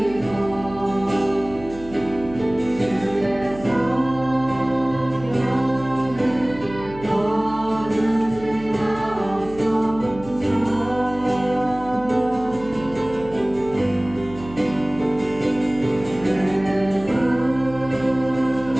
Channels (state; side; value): noise; right; hum, 17 dB below the sound